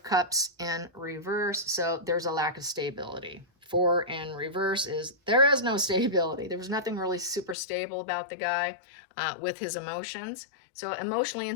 Cups in reverse. So there's a lack of stability. 4 in reverse is there is no stability. There was nothing really super stable about the guy with his emotions. So emotionally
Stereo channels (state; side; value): drops out; right; at 7.6 s